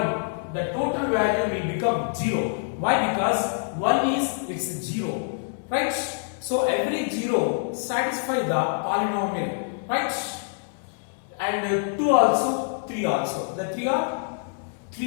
the total value will become 0. Why? Because 1 is its 0, right? So every 0 satisfy the polynomial, right? And 2 also, 3 also. The 3 are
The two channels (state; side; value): silent; right; 58 dB below the other